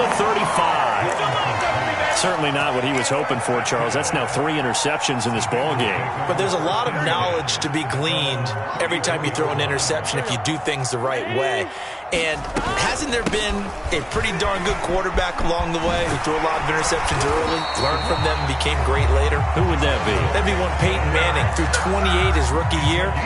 35. Certainly not what he was hoping for, Charles. That's now 3 interceptions in this ball game. But there's a lot of knowledge to be gleaned every time you throw an interception if you do things the right way. And hasn't there been a pretty darn good quarterback along the way who threw a lot of interceptions early, learned from them, and became great later? Who would that be? That'd be one Peyton Manning. Threw 28 his rookie year.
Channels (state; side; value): identical; both; correlation 1.00